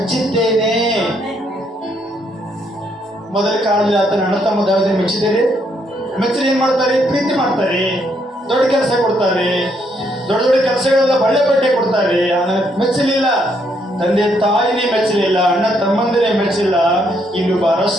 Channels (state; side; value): normal; both; correlation 0.73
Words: ಮೊದಲ ಕಾಲದಲ್ಲಿ ಆತನ ಅಣ್ಣ ತಮ್ಮ ದಾವೀದನ ಮೆಚ್ಚಿದ್ದೇನೆ. ಮೆಚ್ಚಿ ಏನ್ ಮಾಡ್ತಾರೆ? ಪ್ರೀತಿ ಮಾಡ್ತಾರೆ, ದೊಡ್ಡ ಕೆಲಸ ಕೊಡ್ತಾರೆ, ದೊಡ್ಡ ದೊಡ್ಡ ಕೆಲಸಗಳೆಲ್ಲ ಬಳ್ಳೆ ಬಟ್ಟೆ ಕೊಡ್ತಾರೆ. ಮೆಚ್ಚಲಿಲ್ಲ, ತಂದೆ ತಾಯಿನೇ ಮೆಚ್ಚಲಿಲ್ಲ, ಅಣ್ಣ ತಮ್ಮಂದಿರೇ ಮೆಚ್ಚಿಲ್ಲ, ಇನ್ನೊಬ್ಬ